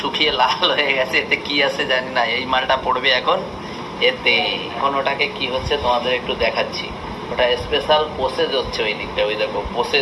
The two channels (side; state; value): both; identical; correlation 1.00